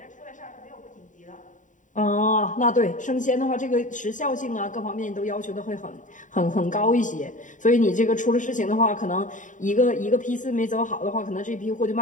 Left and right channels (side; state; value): right; late; 0.37 ms